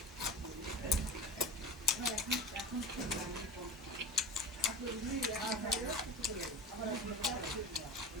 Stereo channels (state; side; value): normal; both; correlation 0.32